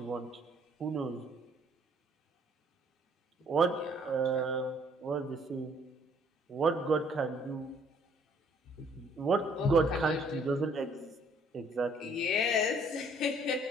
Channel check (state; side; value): normal; both; correlation 0.61